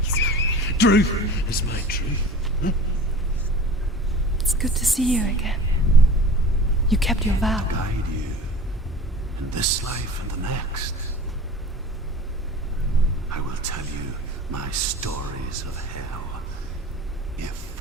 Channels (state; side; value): normal; both; correlation 0.39